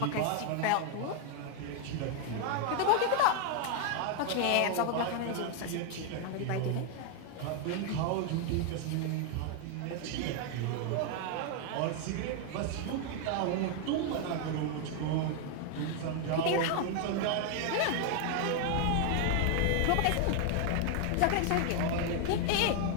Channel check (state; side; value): different; both; correlation 0.00